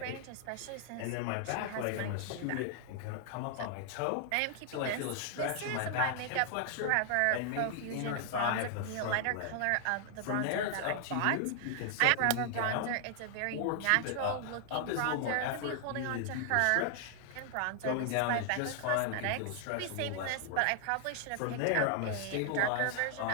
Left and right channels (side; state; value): both; different; correlation 0.00